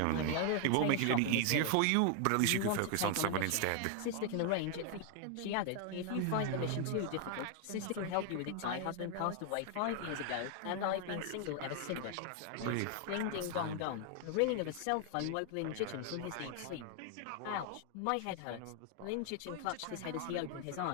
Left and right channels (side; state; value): both; different; correlation 0.00